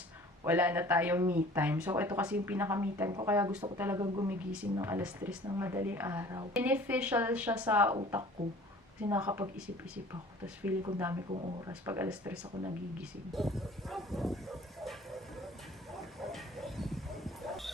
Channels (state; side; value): normal; both; correlation 0.48